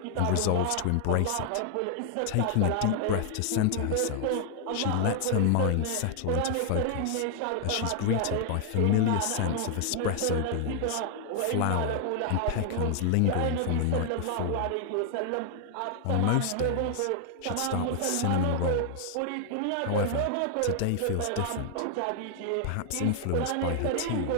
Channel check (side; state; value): both; different; correlation 0.00